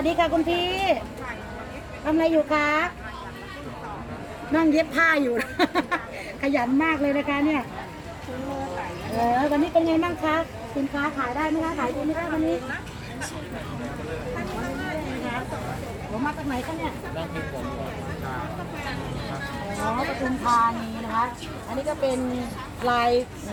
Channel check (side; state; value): both; identical; correlation 1.00